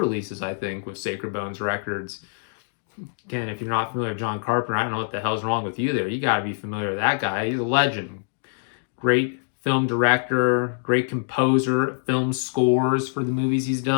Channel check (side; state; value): right; silent; digital silence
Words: I think, with Sacred Bones Records. Again, if you're not familiar with John Carpenter, I don't know what the hell's wrong with you there. You got to be familiar with that guy. He's a legend. Great film director, great composer, film scores for the movies he's